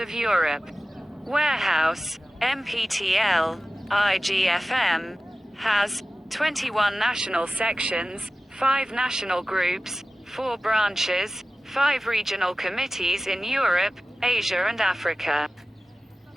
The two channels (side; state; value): both; normal; correlation 0.95